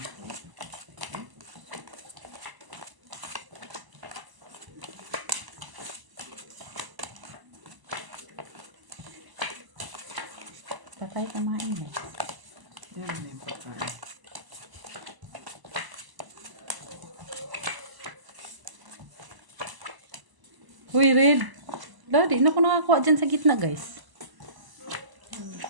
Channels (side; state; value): left; late; 1.0 ms